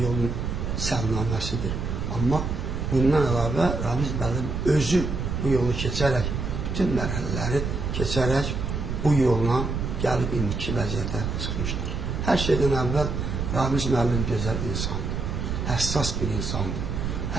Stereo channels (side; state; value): right; noise; rumble, 2 dB below the sound